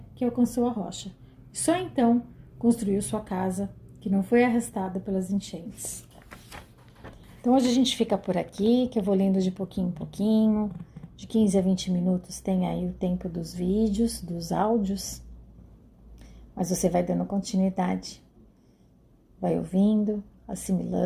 que alcançou a rocha. Só então construiu sua casa, que não foi arrastada pelas enchentes. Então hoje a gente fica por aqui, que eu vou lendo de pouquinho em pouquinho. De 15 a 20 minutos tem aí o tempo dos vídeos, dos áudios. Mas você vai dando continuidade. Vai ouvindo,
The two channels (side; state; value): both; identical; correlation 1.00